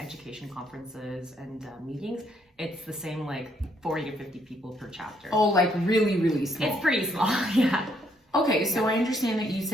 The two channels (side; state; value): both; normal; correlation 0.71